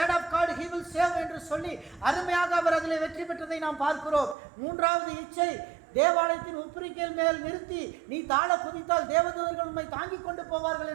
of God he will save என்று சொல்லி அருமையாக அவர் அதில் வெற்றி பெற்றதை நாம் பார்க்கிறோம். 3வது இச்சை தேவாலயத்தின் உப்பரிக்கையில் மேல் நிறுத்தி நீ தாழ குதித்தால் தேவதூதர்கள் உண்மை தாங்கிக் கொண்டு போவார்கள்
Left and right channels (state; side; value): drops out; left; at 4.4 s